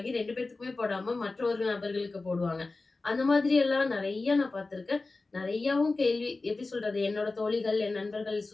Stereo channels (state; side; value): quieter; right; 3.5 dB